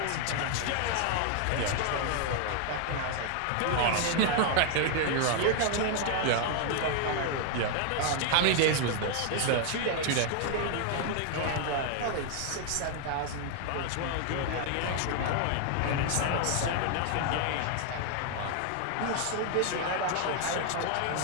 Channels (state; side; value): different; both; correlation 0.00